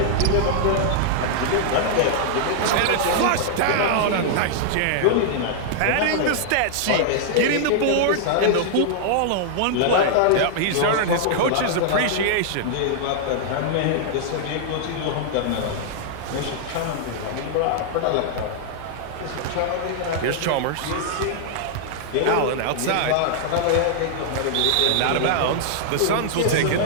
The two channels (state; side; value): different; both; correlation -0.01